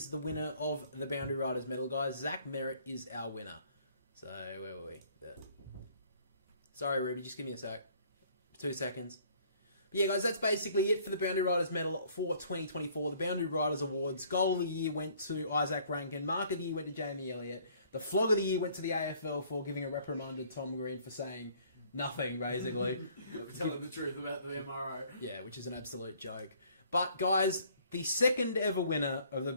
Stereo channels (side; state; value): both; inverted; correlation -0.59